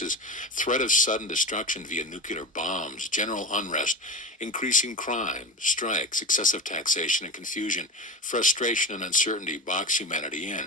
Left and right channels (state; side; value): normal; both; correlation 0.24